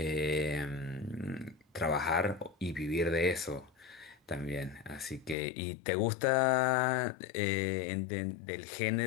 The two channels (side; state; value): right; drops out; at 5.4 s